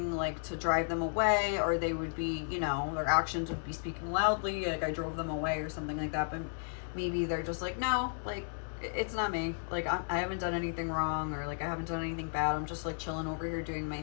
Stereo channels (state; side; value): silent; right; digital silence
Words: like to drive them away, or they would be, you know, their actions would be speaking loudly, like I drove them away or something like that. But maybe they're just like, no, like it's not me, like I haven't done anything wrong, or like I haven't done anything bad, I'm just like chilling over here doing my